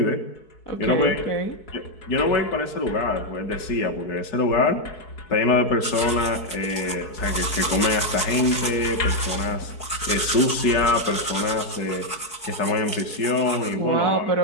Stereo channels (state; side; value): late; right; 4.6 ms